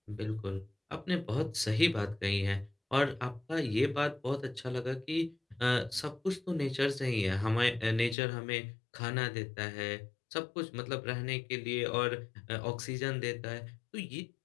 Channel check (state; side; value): drops out; right; at 8.2 s